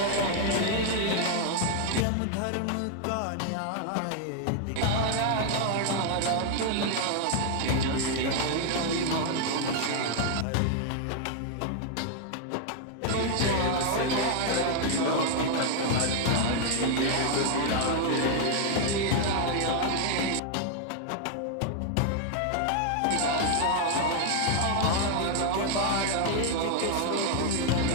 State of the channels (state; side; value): different; both; correlation 0.00